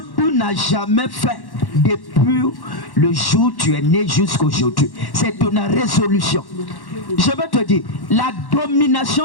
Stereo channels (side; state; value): right; late; 1.1 ms